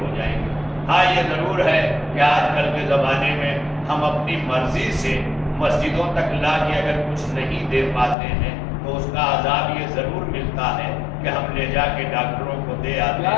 جائیں گے۔ ہاں یہ ضرور ہے کہ آج کل کے زمانے میں ہم اپنی مرضی سے مسجدوں تک لا کے اگر کچھ نہیں دے پاتے ہیں تو اس کا عذاب یہ ضرور ملتا ہے کہ ہم لے جا کے ڈاکٹروں کو دے آتے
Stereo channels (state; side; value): drops out; right; at 8.2 s